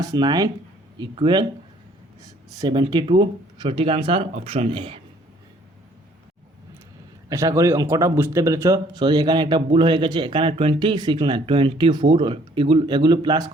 9 ইকুয়াল 72। সঠিক আনসার অপশন এ। আশা করি অঙ্কটা বুঝতে পেরেছ। সরি, এখানে একটা ভুল হয়ে গেছে। এখানে 26 না 24, এগুলো প্লাস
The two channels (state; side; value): normal; both; correlation 0.60